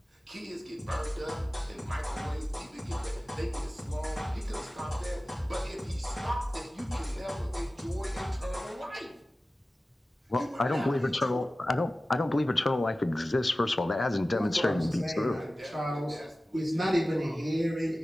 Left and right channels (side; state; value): both; normal; correlation 0.96